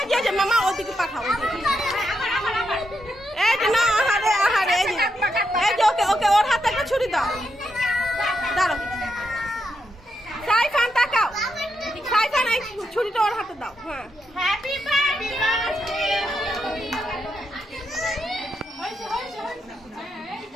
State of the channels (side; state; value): both; normal; correlation 0.83